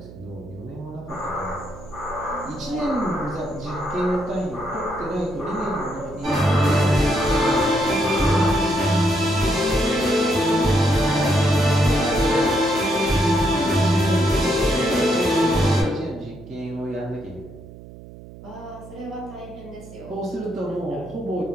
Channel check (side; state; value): right; noise; hum, 17 dB below the sound